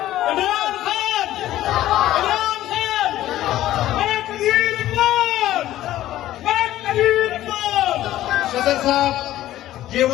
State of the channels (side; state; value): right; quieter; 14.0 dB